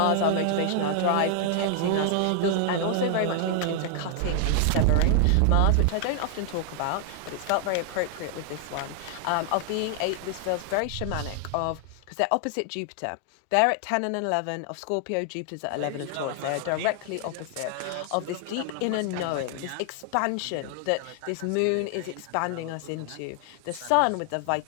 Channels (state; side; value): different; both; correlation 0.00